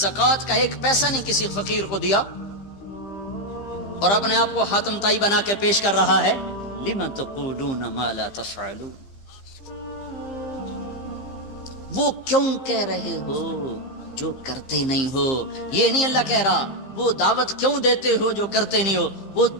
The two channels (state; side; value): late; right; 15 ms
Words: کا 1 پیسہ نہیں کسی فقیر کو دیا اور اپنے آپ کو حاتم تائی بنا کے پیش کر رہا ہے. لم تقولون ما لا تفعلون. وہ کیوں کہہ رہے ہو جو کرتے نہیں ہو. یہ نہیں اللہ کہہ رہا وہ دعوت کیوں دیتے ہو جو کرتے نہیں ہو. وہ